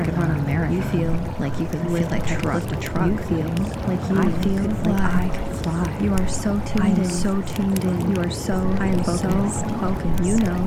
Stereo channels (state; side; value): identical; both; correlation 1.00